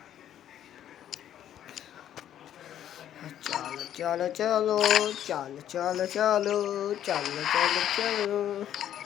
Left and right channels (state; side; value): quieter; right; 10.8 dB